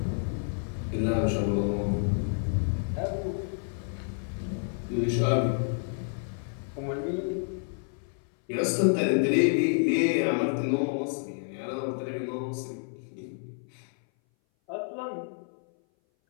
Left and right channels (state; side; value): silent; right; 58 dB below the other